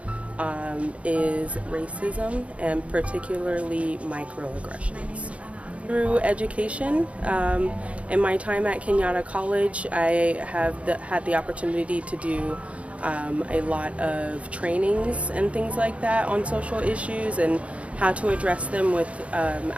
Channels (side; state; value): left; late; 0.063 ms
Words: is racism, and particularly microaggressions. Through education, in my time at Kenyatta College, I have had the opportunity to do a lot of trainings and things like that on social issues and how to address them with